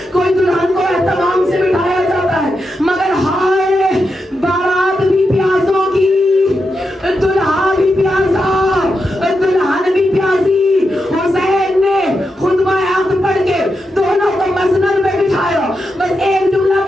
کوئی دلہن کو اہتمام سے بٹھایا جاتا ہے، مگر ہائے بارات بھی پیاسوں کی، دلہا بھی پیاسا، دلہن بھی پیاسی۔ حسین نے خطبہ عقد پڑھ کے دونوں کو مسند میں بٹھایا، بس ایک جملہ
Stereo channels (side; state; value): both; normal; correlation 0.86